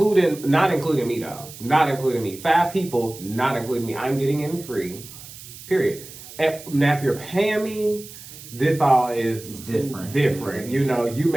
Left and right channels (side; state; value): right; noise; hiss, 16 dB below the sound